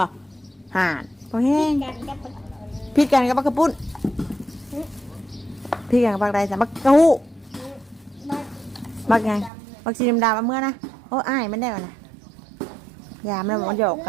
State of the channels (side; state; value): left; drops out; at 9.5 s